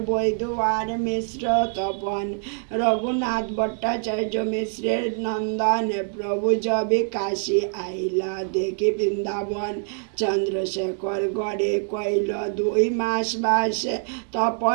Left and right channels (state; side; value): silent; left; 62 dB below the other